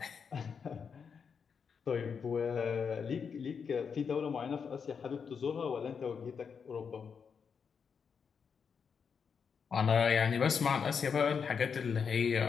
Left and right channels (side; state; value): right; quieter; 6.3 dB